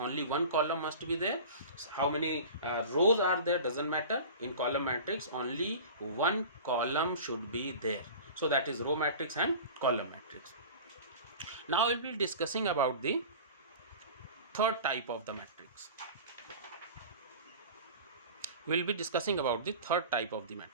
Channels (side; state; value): both; inverted; correlation -0.37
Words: one column must be there. How many rows are there, doesn't matter. In column matrix, only one column should be there. So that is row matrix and column matrix. Now I will be discussing about the third type of the matrix. We will be discussing about the third type of the